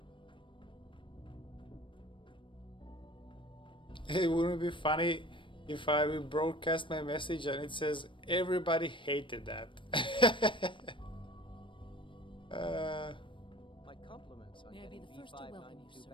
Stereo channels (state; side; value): late; right; 0.24 ms